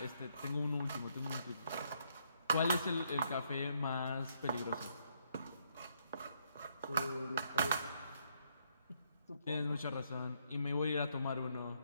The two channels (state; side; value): inverted; both; correlation -0.73